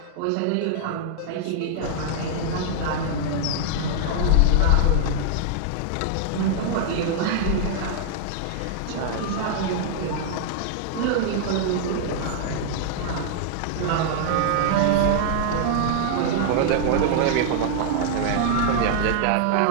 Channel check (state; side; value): different; both; correlation -0.01